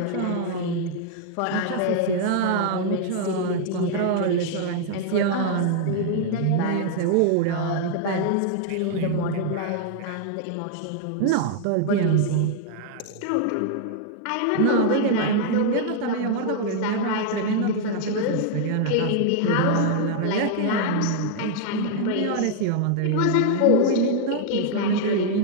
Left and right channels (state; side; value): different; both; correlation -0.01